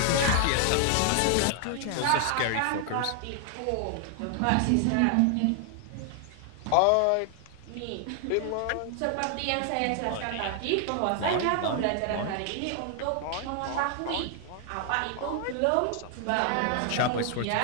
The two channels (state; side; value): different; both; correlation 0.00